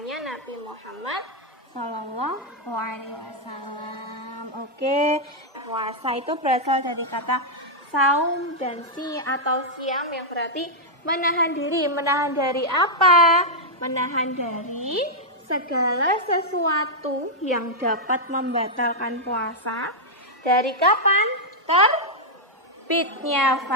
Nabi Muhammad Sallallahu Alaihi Wasallam. Oke, puasa itu berasal dari kata saum dan atau siam yang berarti menahan diri. Menahan dari apa? Menahan dari segala sesuatu yang dapat membatalkan puasa. Dari kapan? Terbitnya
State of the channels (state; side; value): normal; both; correlation -0.05